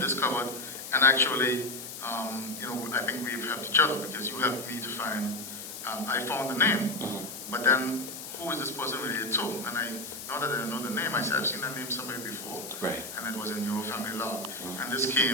discovered, and actually, I think we've helped each other because you helped me to find. I found the name, but then who is this person related to? And now that I know the name, I said I've seen that name somewhere before. Right. And it was in your family log. And this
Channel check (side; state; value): left; noise; hiss, 10 dB below the sound